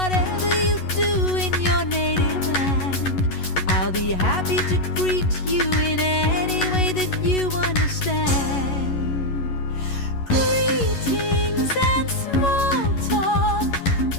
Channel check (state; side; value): late; right; 11 ms